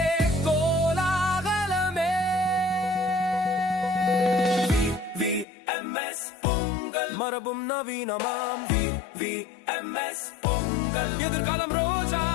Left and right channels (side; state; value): right; drops out; at 5.5 s